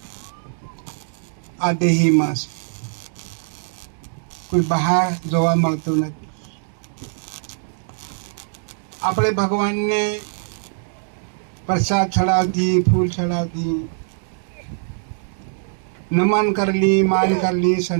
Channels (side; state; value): left; silent; digital silence